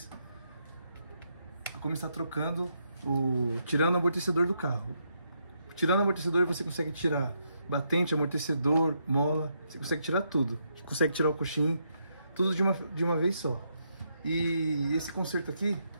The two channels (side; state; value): both; inverted; correlation -0.79